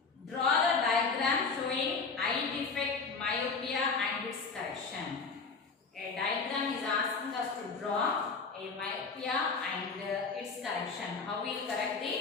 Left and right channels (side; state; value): right; quieter; 4.6 dB